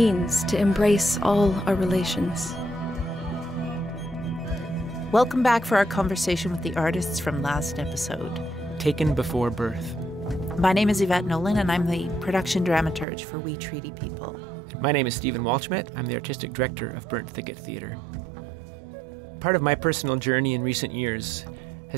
to embrace all our relations. Welcome back for our conversation with the artists from last episode. Taken Before Birth. My name is Yvette Nolan, and I'm the production dramaturge for We Treaty People. My name is Stephen Walschmidt. I'm the artistic director of Burnt Thicket Theatre. Part of my personal journey in recent years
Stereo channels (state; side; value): drops out; left; at 13.1 s